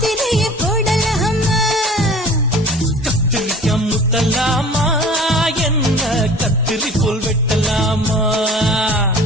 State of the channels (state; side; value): normal; both; correlation 0.44